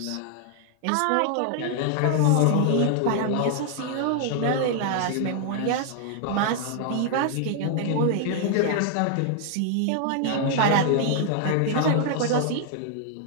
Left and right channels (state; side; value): different; both; correlation 0.00